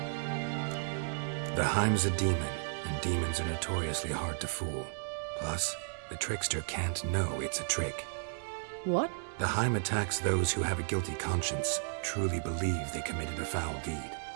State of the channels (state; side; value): silent; left; digital silence